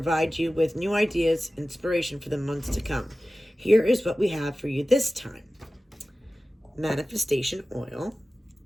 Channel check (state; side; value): normal; both; correlation 0.96